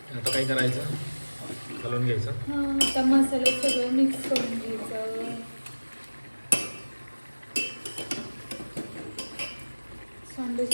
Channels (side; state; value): both; inverted; correlation -1.00